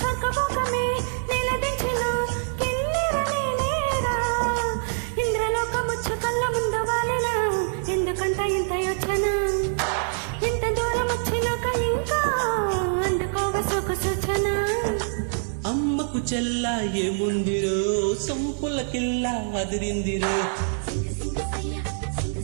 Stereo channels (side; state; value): left; silent; digital silence